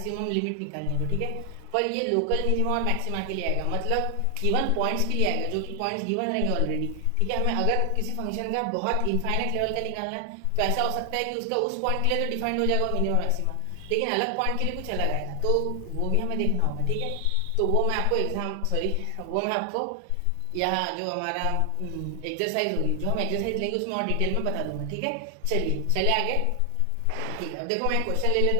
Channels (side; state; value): both; different; correlation 0.00